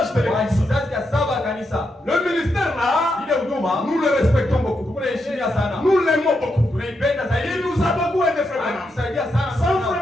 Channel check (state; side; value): normal; both; correlation 0.83